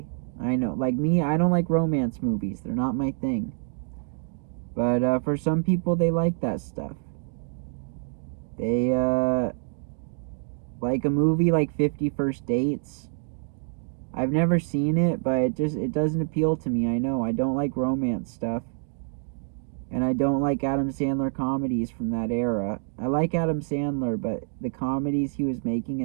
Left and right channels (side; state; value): left; silent; digital silence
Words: I know, like me, I don't like romance movies. They're not my thing. But for some people, they like that stuff. They like a movie like 50 First Dates. I've never seen it, but it doesn't appeal to me. I know I don't like romance stuff, and I don't like Adam Sandler comedies from that era. I like Adam Sandler, but the comedies he was making